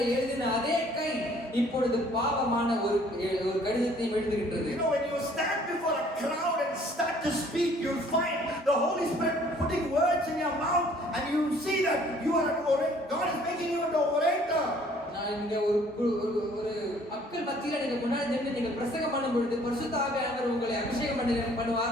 எழுதின அதே கை இப்பொழுது பாவமான ஒரு கடிதத்தை எழுதுகின்றது. You know, when you stand before a crowd and start to speak, you'll find the Holy Spirit putting words in your mouth, and you see that you are an orator. God is making you an orator. நான் இங்க ஒரு மக்கள் மக்கள் மத்தியில நீங்க முன்னாடி நின்று நீங்க பிரசங்கம் பண்ணும் பொழுது பரிசுத்த ஆவியானவர் உங்களை அபிஷேகம்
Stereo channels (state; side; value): normal; both; correlation 0.58